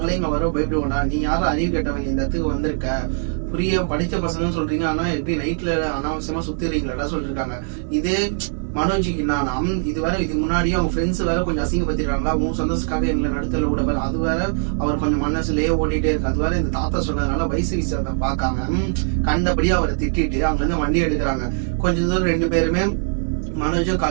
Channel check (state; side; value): silent; left; digital silence